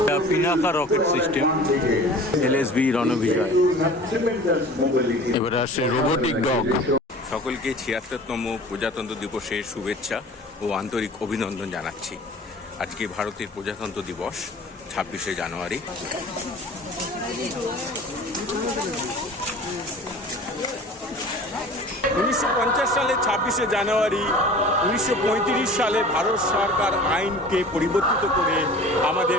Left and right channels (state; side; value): normal; both; correlation 0.43